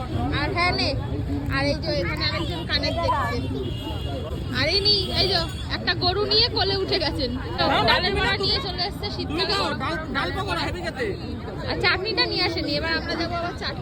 আর হ্যাঁ নে। আর এই যে এখানে আরেকজন কানের দেখছে। আর এই যে একটা গরু নিয়ে কোলে উঠে গেছেন। ডালের বড়া নিয়ে চলে এসছে শীতকালে। ডাল পকোড়া হেভি খেতে। আর চাটনিটা নিয়ে আসেনি, এবার আমরা যাবো আবার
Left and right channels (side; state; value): both; identical; correlation 1.00